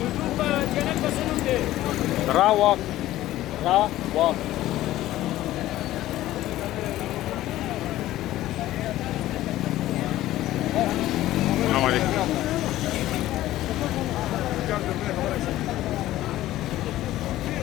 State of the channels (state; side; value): quieter; right; 15.0 dB